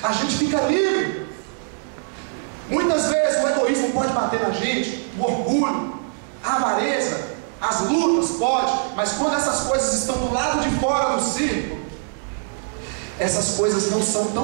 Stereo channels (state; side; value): silent; left; digital silence